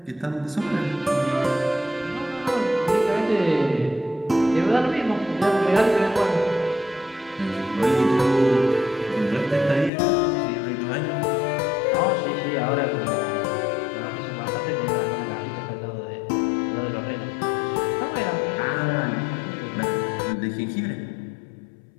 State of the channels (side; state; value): right; drops out; at 9.9 s